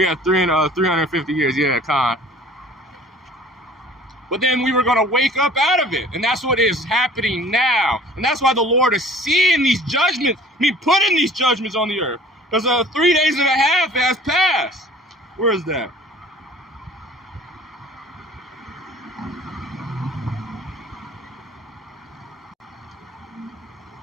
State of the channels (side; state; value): both; normal; correlation 0.49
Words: 350 years. Yeah, Khan. But then we were going to wake up out of it. And that's what is happening now. And that's why the Lord is seeing these judgments. Putting these judgments on the earth. Because 3 days and a half has passed. Where is that?